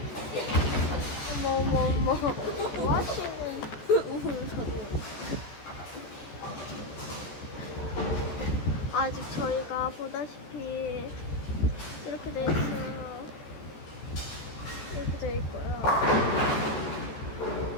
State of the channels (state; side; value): late; right; 14 ms